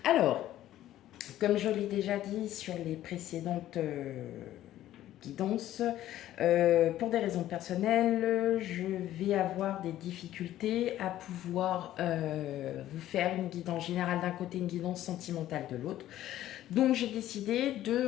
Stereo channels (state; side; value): quieter; right; 13.3 dB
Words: Alors, comme je l'ai déjà dit sur les précédentes guidances, pour des raisons personnelles, je vais avoir des difficultés à pouvoir vous faire une guidance générale d'un côté, une guidance sentimentale de l'autre. Donc j'ai décidé de